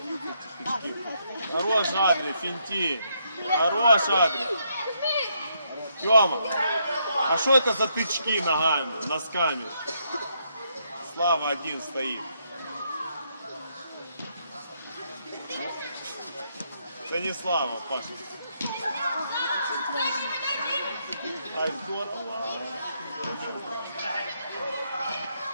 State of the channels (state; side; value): inverted; both; correlation -0.75